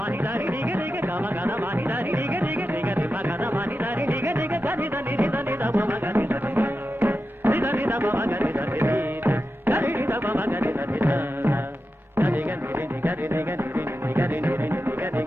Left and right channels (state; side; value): normal; both; correlation 0.90